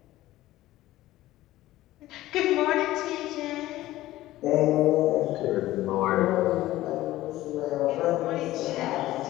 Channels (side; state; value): right; quieter; 15.9 dB